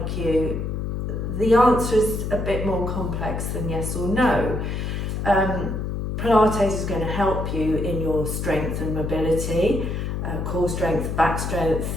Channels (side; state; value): left; noise; hum, 3 dB below the sound